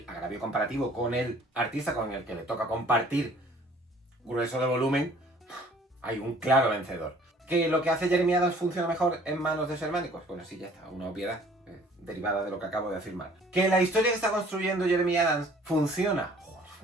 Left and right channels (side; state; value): both; normal; correlation 0.54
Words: agravio comparativo con el artista con el que le toca compartir grueso de volumen, hay un claro vencedor. ¿Que lo que hace Jeremy Adams funciona mejor en manos de su hermano? Pues bueno, sí, ya está, una obviedad derivada de lo que acabo de afirmar. ¿Que la historia que está construyendo Jeremy Adams funciona? Joder,